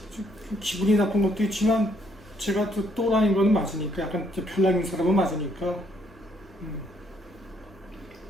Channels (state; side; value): normal; both; correlation 0.70